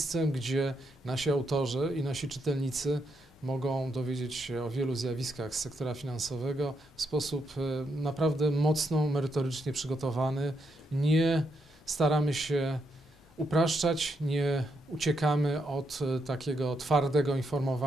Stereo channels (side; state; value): both; normal; correlation 0.79